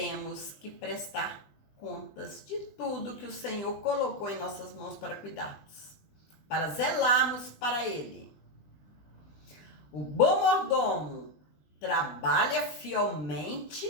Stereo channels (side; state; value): right; late; 20 ms